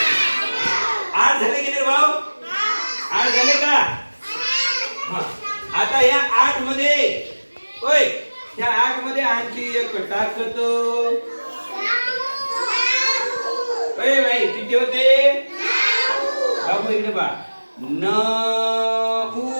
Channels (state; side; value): inverted; both; correlation -1.00